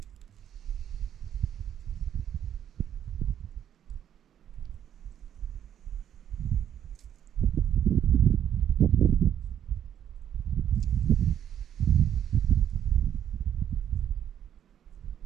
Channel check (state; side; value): quieter; left; 9.9 dB